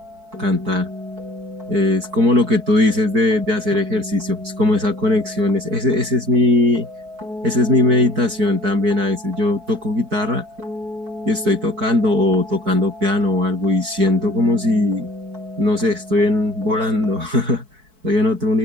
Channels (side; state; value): left; late; 4.6 ms